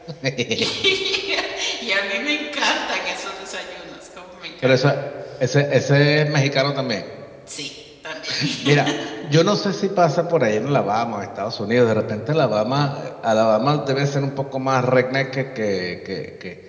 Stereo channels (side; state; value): both; identical; correlation 1.00